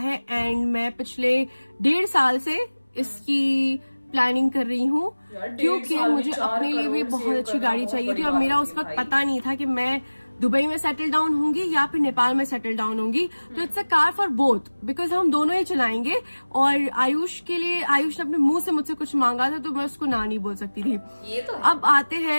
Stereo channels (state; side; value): inverted; both; correlation -1.00